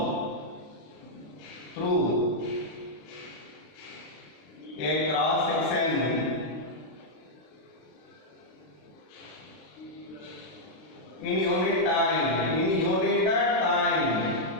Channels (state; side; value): late; right; 33 ms